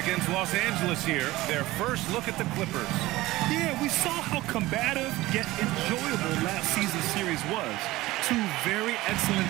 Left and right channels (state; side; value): quieter; left; 18.3 dB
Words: Los Angeles here, their first look at the Clippers. Yeah, we saw how combative yet enjoyable last season's series was. Two very excellent